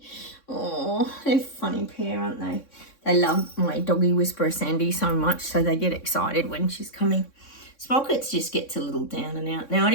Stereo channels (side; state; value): right; late; 3.6 ms